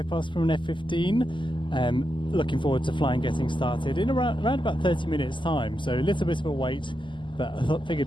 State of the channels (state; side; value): late; right; 0.24 ms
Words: past from an F-15. Looking forward to flying getting started in around about 30 minutes time, so a little bit of a wait, but I